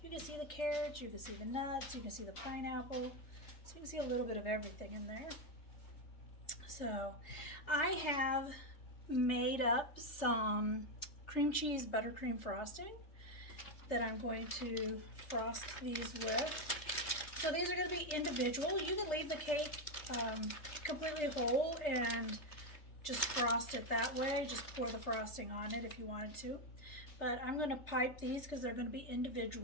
you can see the carrots, you can see the nuts, you can see the pineapple, so you can see a little bit of everything in there. So I have made up some cream cheese buttercream frosting that I'm going to frost these with. So these are going to be individual. You can leave the cake completely whole and just frost it that way. Just pour the frosting on it if you wanted to. But I'm going to pipe these because they're going to be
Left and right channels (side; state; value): right; late; 3.3 ms